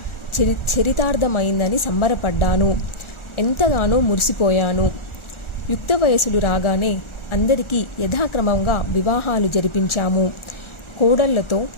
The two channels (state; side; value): late; right; 1.4 ms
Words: చరితార్థమైందని సంబరపడ్డాను. ఎంతగానో మురిసిపోయాను. యుక్త వయసులు రాగానే అందరికీ యథాక్రమంగా వివాహాలు జరిపించాము. కోడళ్లతో,